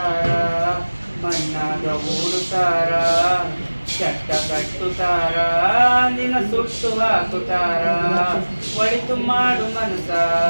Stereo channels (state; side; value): inverted; both; correlation -1.00